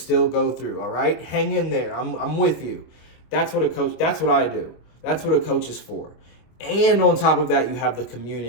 go through. All right? Hang in there. I'm with you. That's what I do. That's what a coach is for. And on top of that, you have the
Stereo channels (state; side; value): late; right; 25 ms